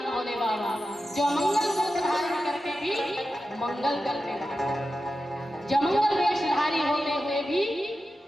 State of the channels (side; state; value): both; normal; correlation 0.91